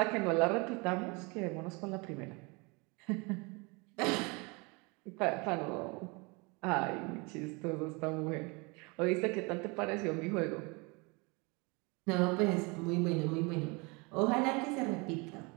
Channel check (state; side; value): quieter; left; 28.6 dB